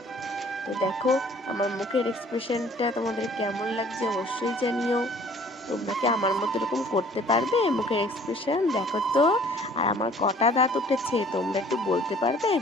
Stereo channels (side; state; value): both; normal; correlation 0.54